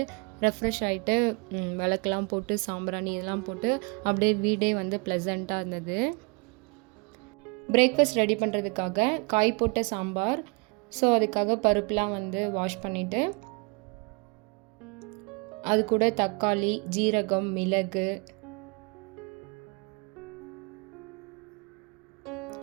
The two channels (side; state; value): left; quieter; 31.0 dB